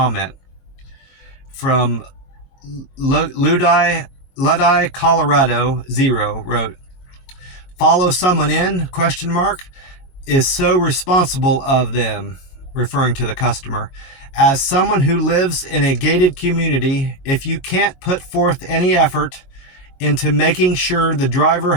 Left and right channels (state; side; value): late; right; 22 ms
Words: From Luddie, Colorado 0 wrote, follow someone in, ? Is so responsible of them, referring to the customer. As someone who lives in a gated community, if you can't put forth any effort into making sure the driver